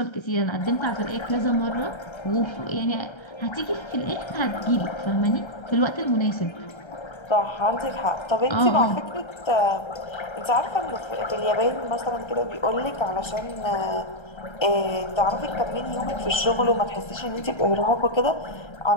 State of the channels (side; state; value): right; late; 1.3 ms